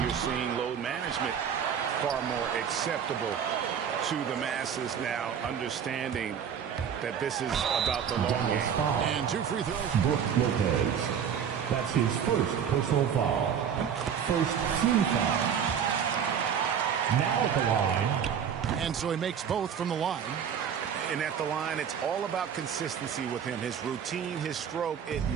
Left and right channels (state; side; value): quieter; left; 7.9 dB